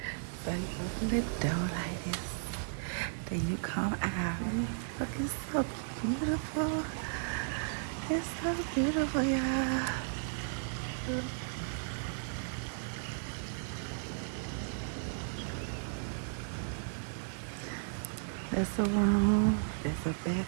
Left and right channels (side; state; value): left; silent; digital silence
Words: So, you open the door like this. Then you come out. Look, it's so beautiful. It's so beautiful, y'all. That's a room. That's a